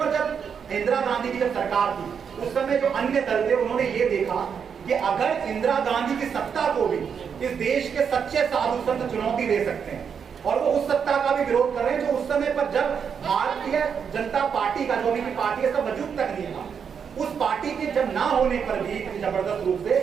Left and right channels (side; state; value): left; quieter; 7.0 dB